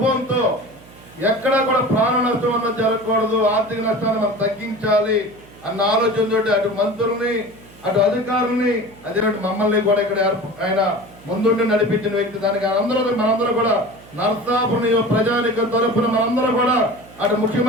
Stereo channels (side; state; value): right; noise; hum, 23 dB below the sound